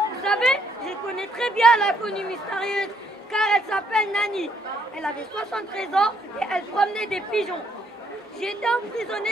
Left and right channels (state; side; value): normal; both; correlation 0.70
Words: savez, je connais très bien l'inconnue mystérieuse car elle s'appelle Nani. Elle avait 73 ans et elle promenait des pigeons. J'ai été